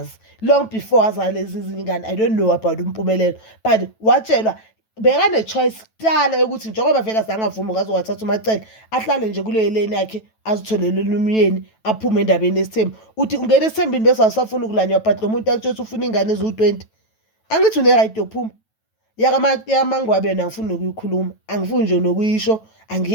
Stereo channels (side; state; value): right; late; 9.1 ms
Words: long before azale lezi zingane. I don't know about Umpumelelo, but watshelwa bekane-choice kuqala ukuthi njengoba vele asangavumi ukazowathatha uMacele ahlale nje kuleyo lane yakhe azitholele umyeni aphume endabeni yesithembu. Uthi ungena esithembini bese awusafuna ukulanywa, but lo muntu akutshela ukuthi ufuna ingane eziwu-20. Angithi une-right yokuphuma. yaMangwabe yona angifuni nokuyikhuluma, angifuni nje nokuyisho,